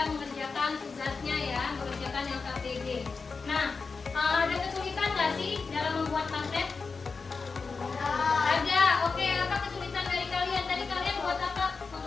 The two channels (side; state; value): right; quieter; 4.6 dB